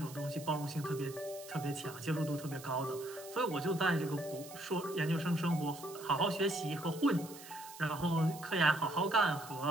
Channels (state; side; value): noise; right; hiss, 16 dB below the sound